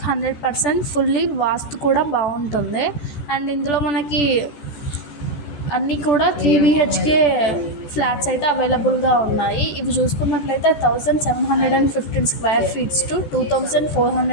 100% ఫుల్లీ వాస్తు కూడా బాగుంటుంది. అండ్ ఇందులో మనకి అన్నీ కూడా 3 BHK ఫ్లాట్స్ అయితే అవైలబుల్గా ఉన్నాయి. ఇవి చూసుకున్నట్లయితే 1715 square feets to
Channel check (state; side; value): late; right; 14 ms